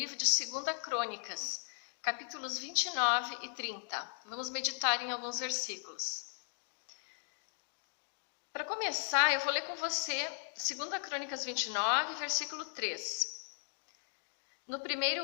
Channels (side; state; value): right; silent; digital silence